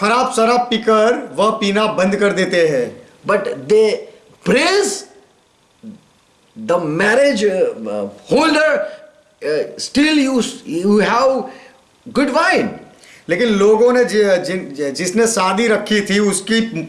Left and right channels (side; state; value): both; identical; correlation 1.00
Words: शराब पीकर वह पीना बंद कर देते हैं। But they praise the marriage holder, still you have good wine. लेकिन लोगों ने जिसने शादी रखी थी उसकी